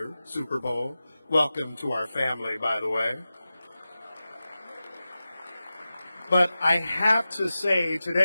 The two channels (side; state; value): both; inverted; correlation -0.94